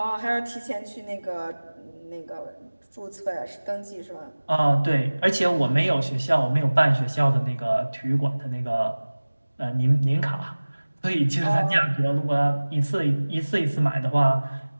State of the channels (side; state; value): both; inverted; correlation -1.00